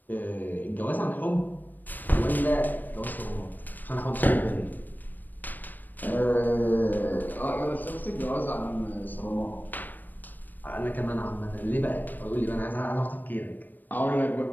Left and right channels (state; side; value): late; right; 0.089 ms